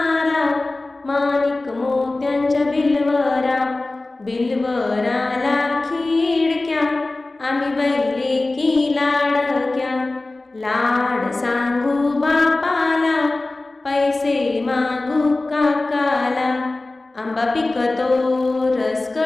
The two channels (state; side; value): quieter; right; 3.0 dB